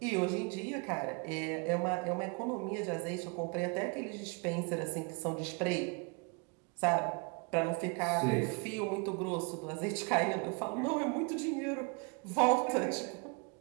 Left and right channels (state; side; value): quieter; left; 31.9 dB